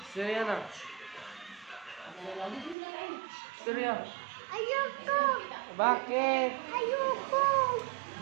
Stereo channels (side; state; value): left; drops out; at 2.8 s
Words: Istorya na. Istorya. Ayoko! Bakit? Ayoko!